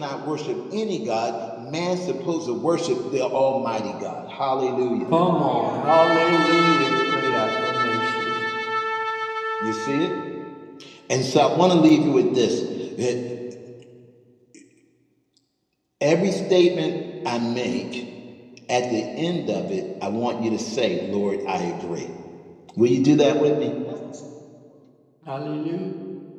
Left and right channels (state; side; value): identical; both; correlation 1.00